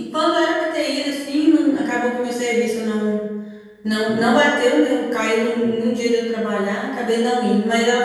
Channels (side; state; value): both; identical; correlation 1.00